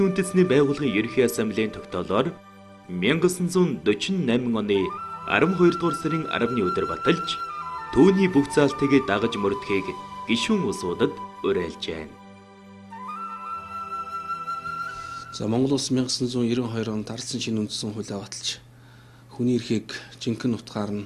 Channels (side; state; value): both; identical; correlation 1.00